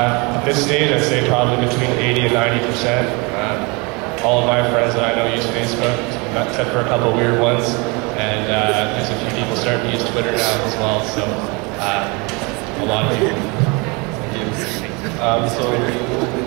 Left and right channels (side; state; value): left; quieter; 28.7 dB